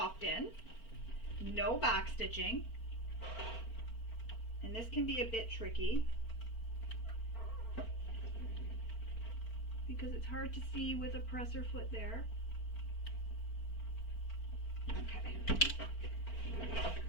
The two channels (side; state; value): right; late; 4.4 ms